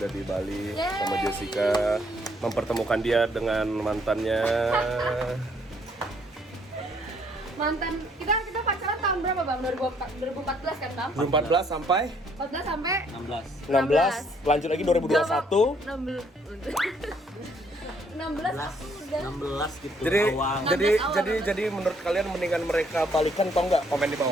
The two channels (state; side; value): normal; both; correlation 0.67